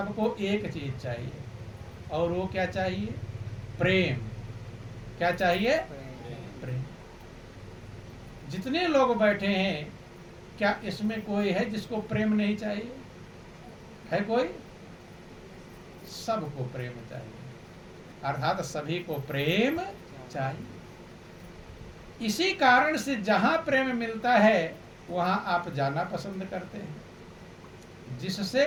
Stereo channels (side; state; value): both; identical; correlation 1.00